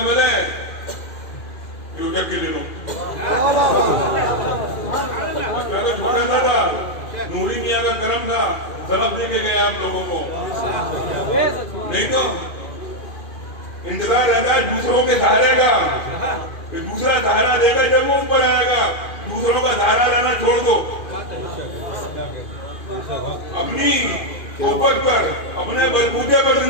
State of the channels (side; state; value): right; late; 2.4 ms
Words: मिले, यूट्यूब के लिए छोटा था, नूरी मियाँ का करम था, सबक दे के गए आप लोगों को। नहीं तो इंतजार रहता है दूसरों के सहारे का, दूसरा सहारा देगा जब वो ऊपर आएगा। दूसरों का सहारा लेना छोड़ दो, अपनी ऊपर पर, अपने बलबूते पर